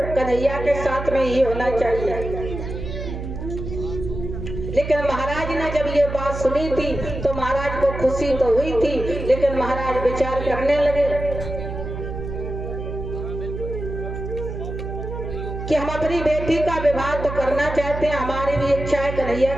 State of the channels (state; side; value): noise; right; hum, 7 dB below the sound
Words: कन्हैया के साथ में ही होना चाहिए। लेकिन महाराज ने जब ये बात सुनी थी तो महाराज को खुशी तो हुई थी, लेकिन महाराज विचार करने लगे कि हम अपनी बेटी का विवाह तो करना चाहते हैं, हमारी भी इच्छा है कन्हैया